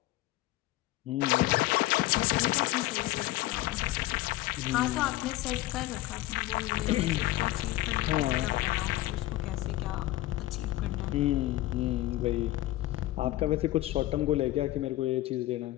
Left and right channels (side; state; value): right; quieter; 16.3 dB